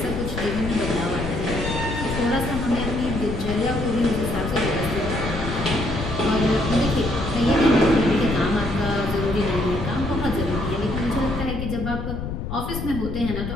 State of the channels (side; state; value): left; noise; rumble, 5 dB below the sound